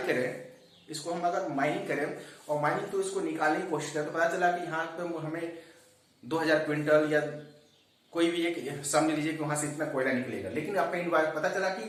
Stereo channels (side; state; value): both; identical; correlation 1.00